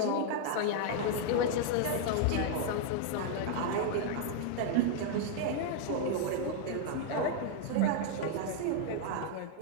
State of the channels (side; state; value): both; different; correlation 0.00